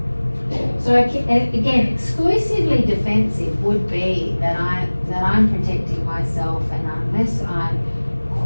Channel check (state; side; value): inverted; both; correlation -1.00